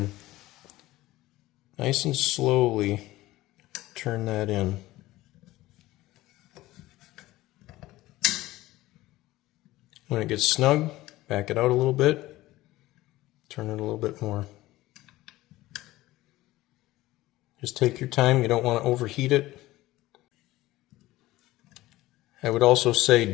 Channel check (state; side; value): quieter; right; 17.4 dB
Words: nice and slowly turn that in. When it gets snug, back it out a little bit, turn it a little bit more. Just take your time, you don't want to overheat it. I would also